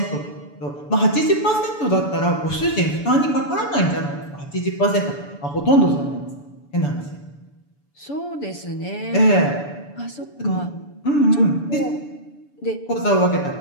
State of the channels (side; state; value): right; late; 7.0 ms